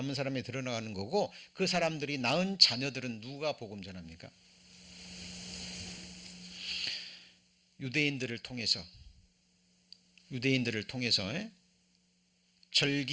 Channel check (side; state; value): both; identical; correlation 1.00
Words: 사람이 드러나는 거고 그 사람들이 낳은 자녀들은 누가 복음 전합니까? 유대인들을 통해서